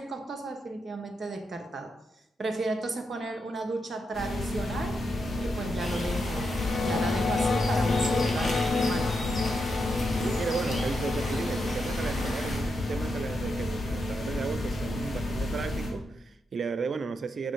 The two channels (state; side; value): normal; both; correlation 0.84